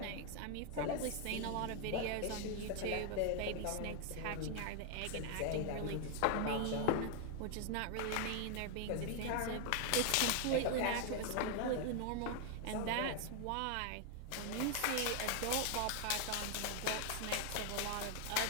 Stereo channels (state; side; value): different; both; correlation 0.00